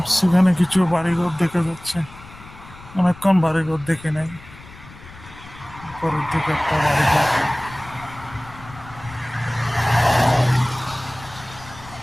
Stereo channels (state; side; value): noise; left; rumble, 19 dB below the sound